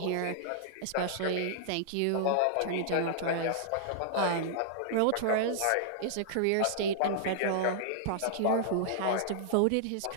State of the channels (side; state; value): both; different; correlation -0.02